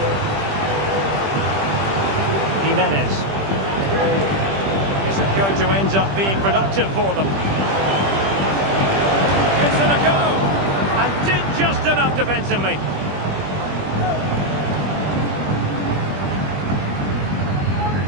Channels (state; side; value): late; left; 20 ms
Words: Jimenez. Is it going to end up being productive for them? It's in a go! And did just enough defensively.